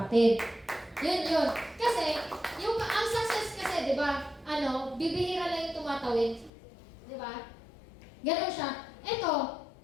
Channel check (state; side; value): drops out; right; at 6.5 s